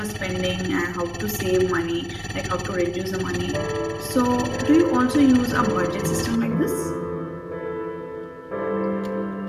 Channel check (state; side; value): identical; both; correlation 1.00